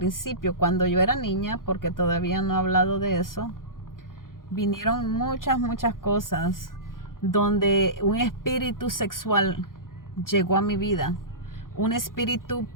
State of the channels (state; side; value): late; right; 0.90 ms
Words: cuando yo era niña, porque todavía no he hablado de eso, vinieron muchas cosas donde un espíritu sexual llegó a mi vida. Un espíritu